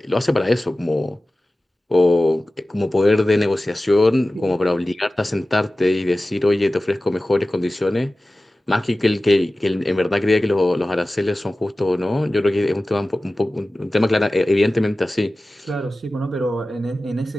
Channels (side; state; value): both; normal; correlation 0.96